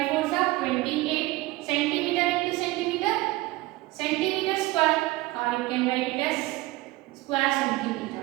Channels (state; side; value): quieter; left; 19.5 dB